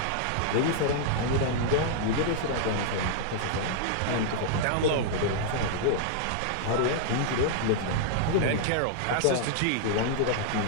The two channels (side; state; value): both; different; correlation -0.01